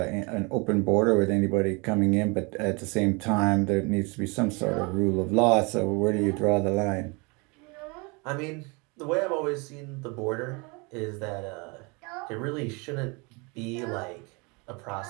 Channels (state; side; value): quieter; left; 29.3 dB